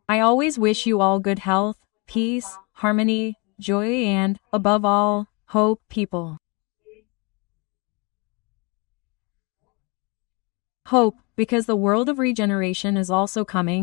I always wish you all good health, peace, harmony, joy and, above all, hope, people. Hope, because the world of regeneration is also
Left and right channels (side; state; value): right; quieter; 29.7 dB